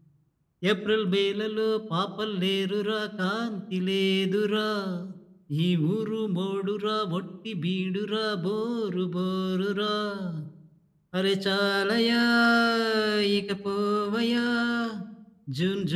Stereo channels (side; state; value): both; identical; correlation 1.00